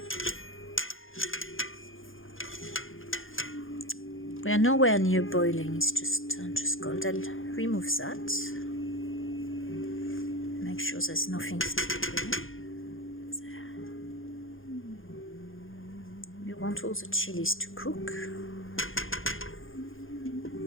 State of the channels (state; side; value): late; right; 0.59 ms